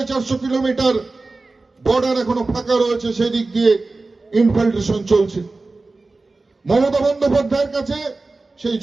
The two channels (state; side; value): quieter; left; 3.4 dB